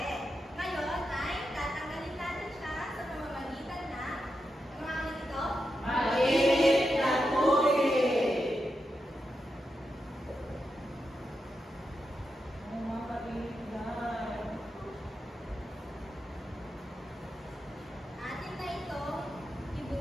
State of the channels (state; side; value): normal; both; correlation 0.87